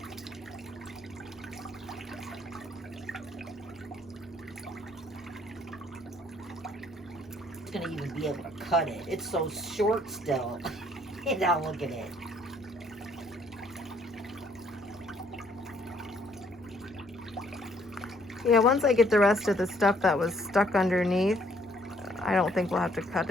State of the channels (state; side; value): normal; both; correlation 0.65